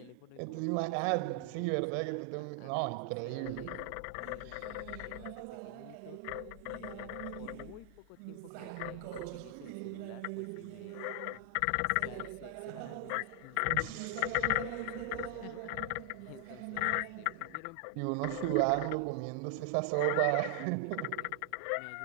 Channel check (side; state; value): both; different; correlation 0.00